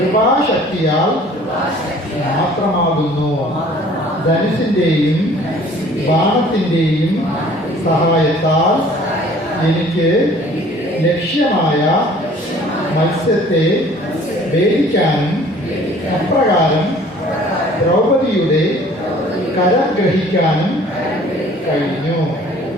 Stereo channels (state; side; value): normal; both; correlation 0.52